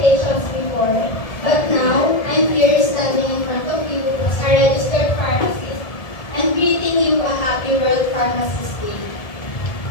before, but now I'm here standing in front of you as a registered pharmacist and greeting you a happy World Pharmacist Day.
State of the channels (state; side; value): late; right; 1.7 ms